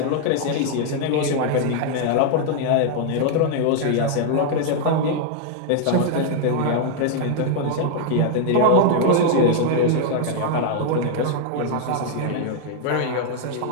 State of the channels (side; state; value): both; different; correlation 0.00